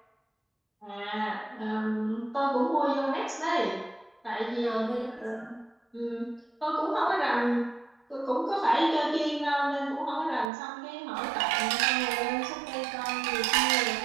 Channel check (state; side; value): drops out; left; at 10.5 s